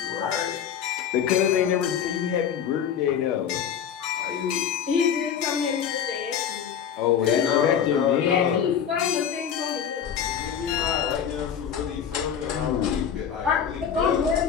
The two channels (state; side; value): quieter; right; 8.2 dB